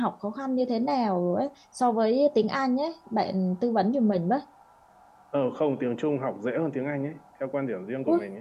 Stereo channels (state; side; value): identical; both; correlation 1.00